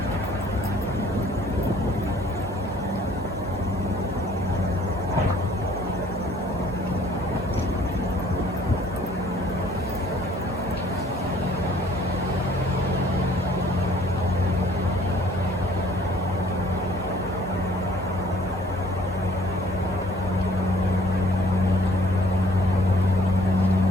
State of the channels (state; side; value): normal; both; correlation 0.57